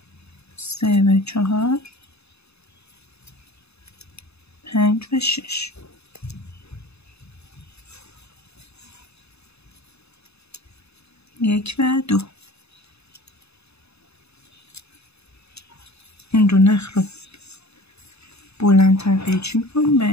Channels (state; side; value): late; right; 0.79 ms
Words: 3 و 4 5 و 6. یک و 2. این دو نخ رو بلندتر قیچی میکنیم